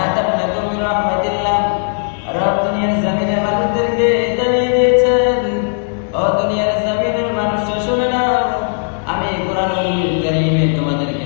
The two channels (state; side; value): silent; right; digital silence